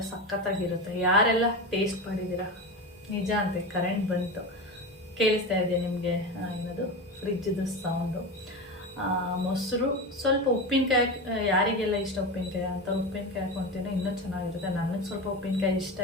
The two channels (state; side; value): normal; both; correlation 0.23